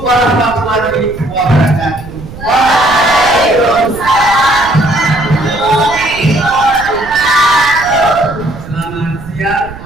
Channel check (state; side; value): noise; right; rumble, 14 dB below the sound